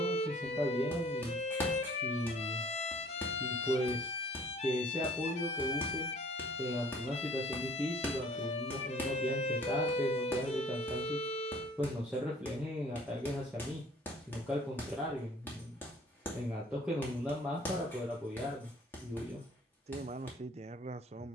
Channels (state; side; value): normal; both; correlation 0.54